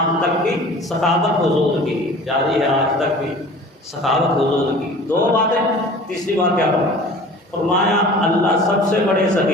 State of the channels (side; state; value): both; normal; correlation 0.43